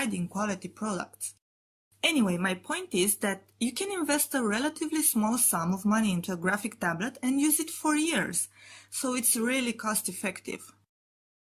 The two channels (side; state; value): both; identical; correlation 1.00